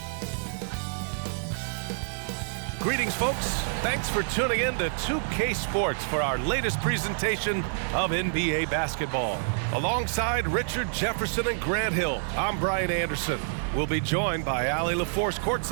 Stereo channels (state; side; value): silent; left; digital silence